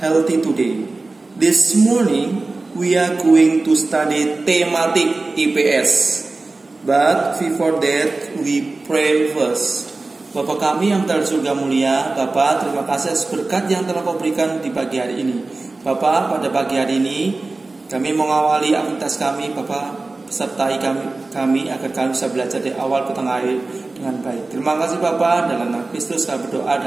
healthy today. This morning, we are going to study thematic IPS. But before that, we pray first. Bapa kami yang telah surga mulia, Bapa, terima kasih atas berkat yang telah Kau berikan di pagi hari ini. Bapa, pada pagi hari ini, kami mengawali aktivitas kami, Bapa. Sertai kami agar kami bisa belajar dari awal ke tengah akhir dengan baik. Terima kasih Bapa, dalam nama Kristus kami berdoa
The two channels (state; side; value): quieter; left; 3.4 dB